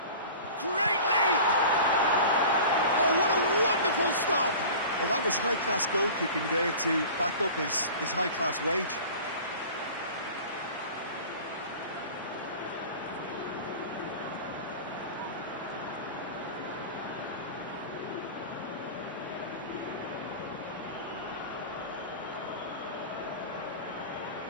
Great leap! Oh, what a wonderful stop! Well, that was high-class goalkeeping there to back up his high-class wage.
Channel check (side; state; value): both; inverted; correlation -0.38